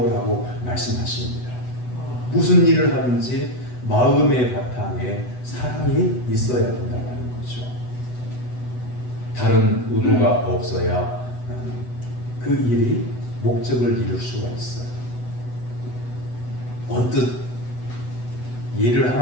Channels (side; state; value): right; late; 8.0 ms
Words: 라고 말씀하십니다. 무슨 일을 하든지 마음의 바탕에 사랑이 있어야 된다는 거죠. 다른 의도가 없어야 그 일이 목적을 이룰 수가 있어요. 언뜻 예를